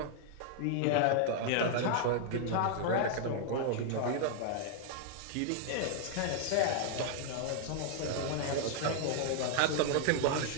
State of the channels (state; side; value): different; both; correlation 0.00